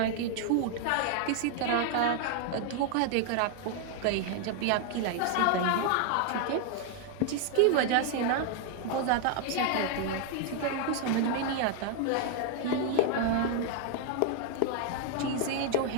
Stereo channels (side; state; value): both; different; correlation 0.00